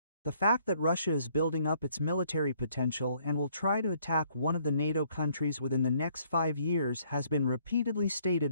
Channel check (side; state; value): both; inverted; correlation -0.65